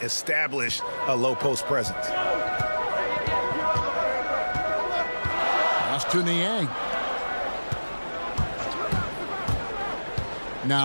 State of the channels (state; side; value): inverted; both; correlation -1.00